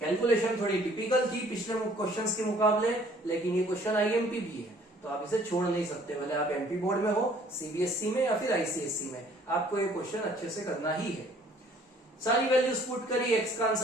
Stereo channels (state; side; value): normal; both; correlation 0.58